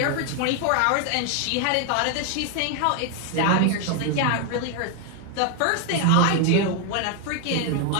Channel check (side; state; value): both; different; correlation 0.01